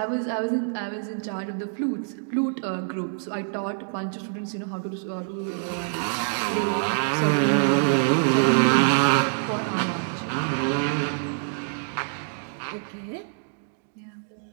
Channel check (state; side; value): silent; left; digital silence